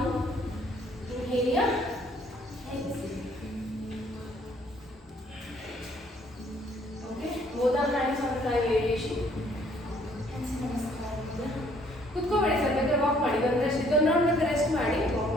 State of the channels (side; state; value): both; normal; correlation 0.63